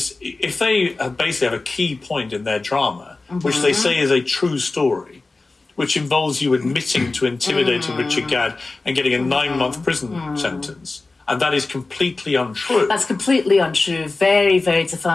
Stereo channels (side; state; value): right; quieter; 3.5 dB